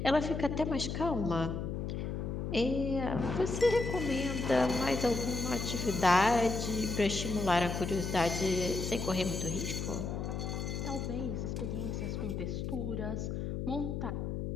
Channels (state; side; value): noise; left; hum, 3 dB below the sound